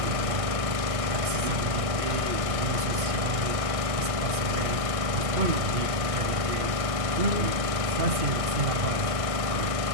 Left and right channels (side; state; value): left; late; 1.6 ms